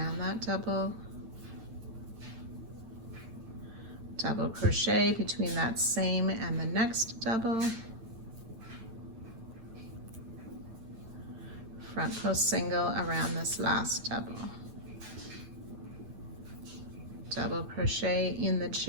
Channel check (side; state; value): left; late; 9.1 ms